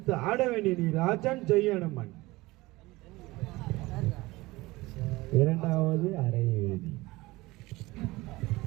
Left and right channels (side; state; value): left; quieter; 20.6 dB